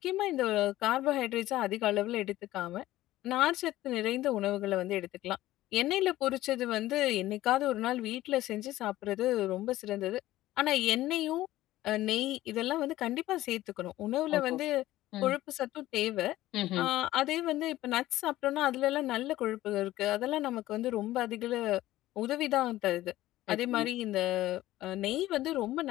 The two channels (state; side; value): quieter; right; 15.6 dB